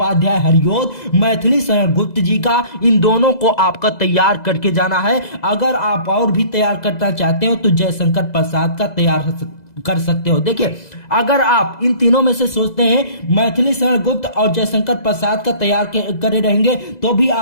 हरियोत, मैथिली शरण गुप्त जी का, इन दोनों को आपका तैयार करके जाना है। अगर आप और भी तैयार करना चाहते हो तो जयशंकर प्रसाद का तैयार कर सकते हो। देखिए अगर आप इन तीनों में से सोचते हैं मैथिली शरण गुप्त और जयशंकर प्रसाद का तैयार करे रहेंगे तो भी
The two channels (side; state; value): right; late; 2.0 ms